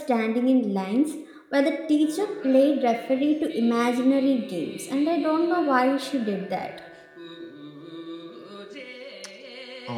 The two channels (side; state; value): both; identical; correlation 1.00